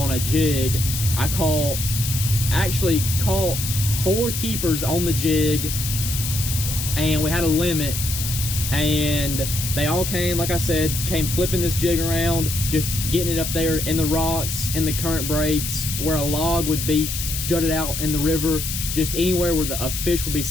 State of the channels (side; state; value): left; noise; hiss, 4 dB below the sound